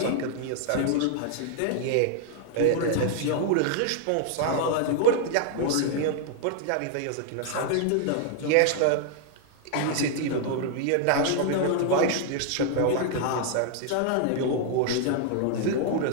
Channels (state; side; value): different; both; correlation 0.00